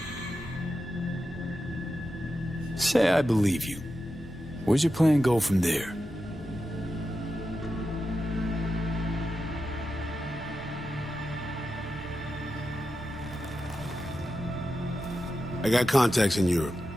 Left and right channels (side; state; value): both; normal; correlation 0.90